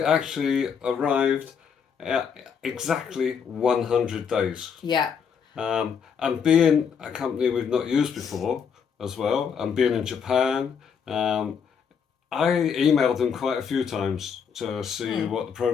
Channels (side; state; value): right; quieter; 6.9 dB